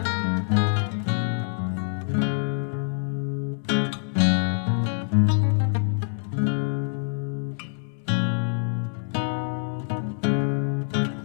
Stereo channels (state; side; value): silent; right; 61 dB below the other